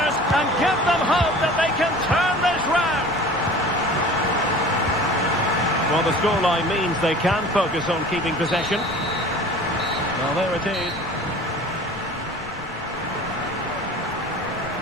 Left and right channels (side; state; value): left; noise; rumble, 21 dB below the sound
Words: and give them hope that they can turn this round. Well, the scoreline means they can focus on keeping possession. Well, there it is.